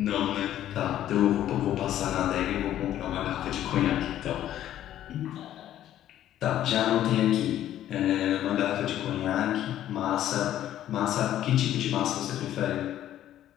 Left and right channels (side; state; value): right; quieter; 12.1 dB